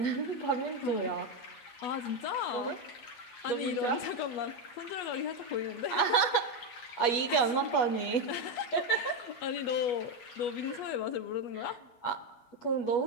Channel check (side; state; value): right; late; 8.3 ms